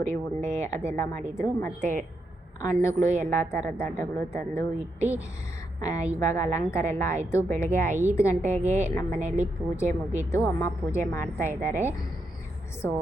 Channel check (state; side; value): normal; both; correlation 0.82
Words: ಉಂಡೆ ಅದೆಲ್ಲ ಮಾಡಿದರು. ಮತ್ತು ಹಣ್ಣುಗಳು, ಎಲ್ಲ ಥರದ ಹಣ್ಣುಗಳು ತಂದು ಇಟ್ಟು ಇವಾಗ ಅಲಂಕಾರ ಎಲ್ಲ ಆಯಿತು. ಬೆಳಗ್ಗೆ 5 ಗಂಟೆಗೆ ನಮ್ಮ ಮನೆಯಲ್ಲಿ ಪೂಜೆ ಮುಗೀತು. ಅಮ್ಮ ಪೂಜೆ ಮಾಡ್ತಾ ಇದ್ದಾರೆ. ಸೊ